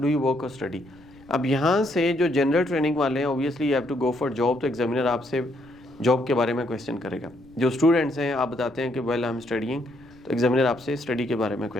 यू वर्क और स्टडी। अब यहाँ से जो जनरल ट्रेनिंग वाले हैं obviously you have to go for job, तो एग्जामिनर आपसे जॉब के बारे में क्वेश्चन करेगा। जो स्टूडेंट्स हैं आप बताते हैं कि वेल आई एम स्टडीइंग, तो एग्जामिनर आपसे स्टडी के बारे में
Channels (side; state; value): left; noise; rumble, 26 dB below the sound